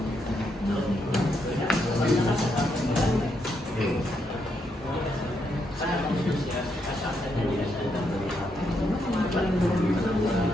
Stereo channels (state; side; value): normal; both; correlation 0.79